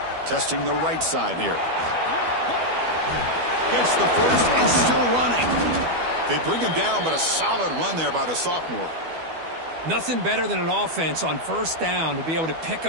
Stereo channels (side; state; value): left; late; 12 ms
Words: Testing the right side here. Gets the first and still running. They bring him down, but a solid run there by the sophomore. Nothing better than an offense on first down to be able to pick